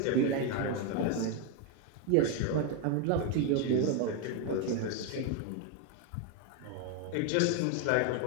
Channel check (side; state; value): both; different; correlation 0.01